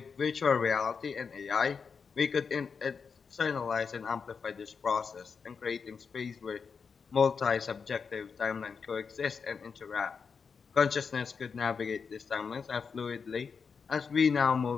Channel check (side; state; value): right; quieter; 5.7 dB